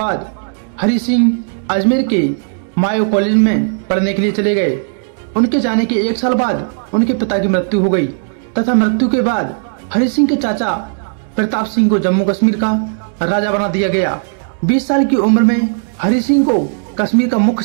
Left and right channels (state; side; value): silent; left; digital silence